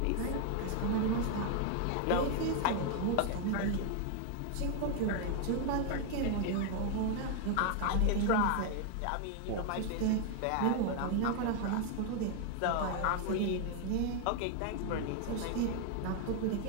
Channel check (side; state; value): both; different; correlation 0.00